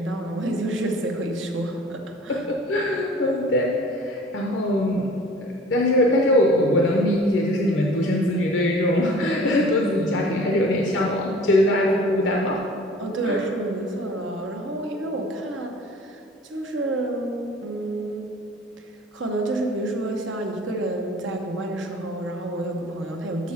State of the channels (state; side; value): normal; both; correlation 0.47